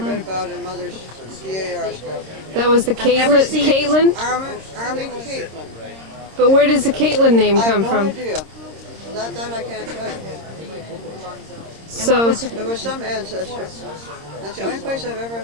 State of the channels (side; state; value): left; late; 26 ms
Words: about in Mother's DAR stuff. That was the Caitlin? Army Caitlin. But where does the Caitlin name come I from? have no idea. That I can't tell you. So, There was some ancestor. That's the only place I've ever